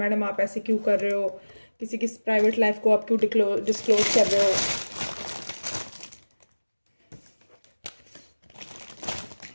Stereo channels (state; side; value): inverted; both; correlation -1.00